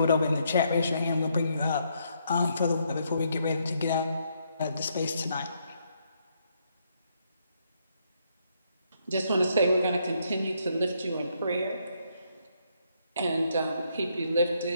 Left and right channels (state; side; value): inverted; both; correlation -0.74